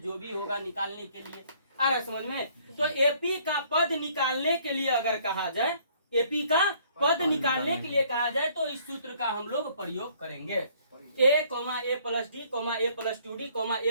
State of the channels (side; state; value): both; inverted; correlation -0.61